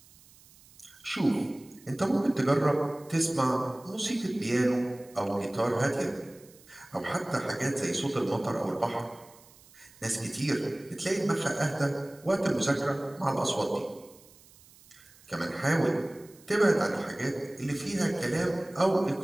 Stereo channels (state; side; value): noise; right; hiss, 25 dB below the sound